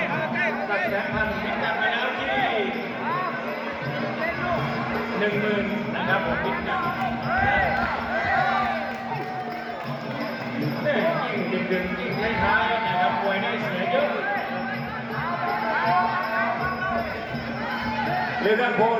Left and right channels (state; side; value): identical; both; correlation 1.00